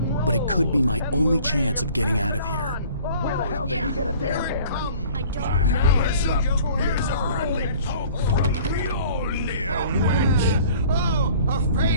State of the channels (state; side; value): inverted; both; correlation -0.49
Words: but it could be my only chance of getting out of here. Where the hell did he get a damn hammer? I don't know. Here's a friendly poke from Mjolnir. Oh,